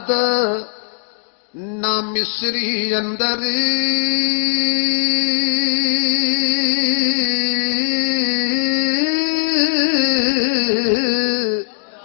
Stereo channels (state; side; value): silent; right; digital silence